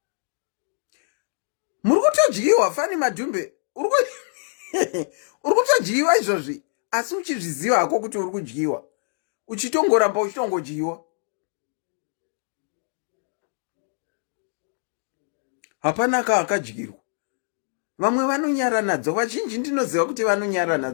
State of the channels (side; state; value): right; silent; digital silence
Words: Murukutodyirwa fani madhumbe. Urukutodyirwa izvozvi. Asi uchizviziva hako kuti urikudyiwa. Uchitongoramba uchitongodyiwa. Hapana akadyirwa. Vamwe vanonyara nadzo. Vazhinji ndinoziva kuti vanonyara